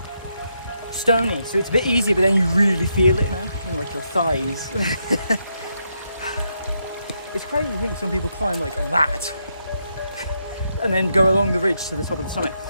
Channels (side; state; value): both; inverted; correlation -0.80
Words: stony, so it's a bit easier, but then you really feel it now in like your thighs. It's crazy to think some people climb like that and then go along the ridge to the top of the summit.